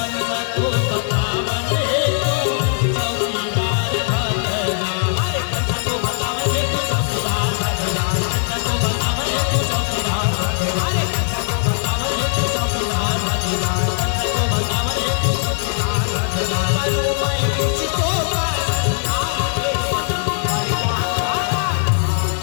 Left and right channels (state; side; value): silent; right; 58 dB below the other